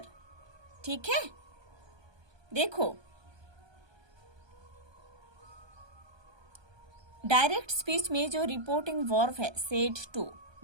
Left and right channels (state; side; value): late; left; 1.2 ms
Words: ठीक है. देखो, डायरेक्ट स्पीच में जो रिपोर्टिंग वर्ब है सेड टू